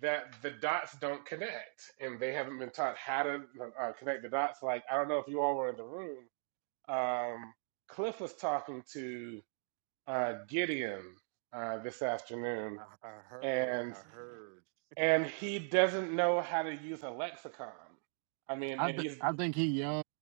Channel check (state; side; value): silent; left; digital silence